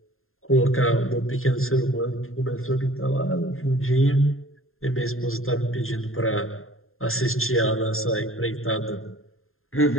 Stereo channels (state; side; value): late; right; 0.61 ms